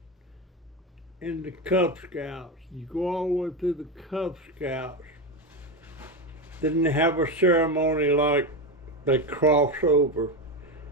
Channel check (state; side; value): normal; both; correlation 0.14